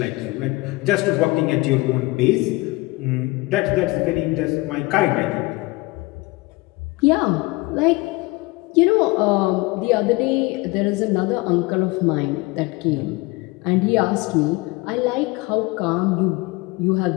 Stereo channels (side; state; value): right; quieter; 22.7 dB